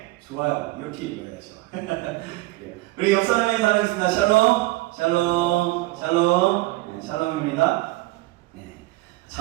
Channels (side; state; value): left; quieter; 19.9 dB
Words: 좋아요. 이렇게 읽어야죠. 우리 옆사람의 사랑했습니다. 샬롬, 샬롬, 샬롬. 네, 샬롬입니다. 네,